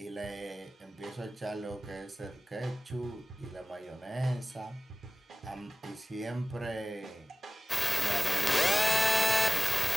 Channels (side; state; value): both; normal; correlation 0.96